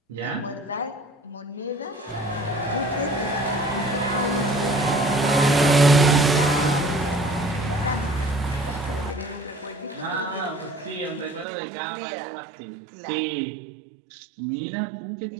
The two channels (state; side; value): drops out; left; at 11.5 s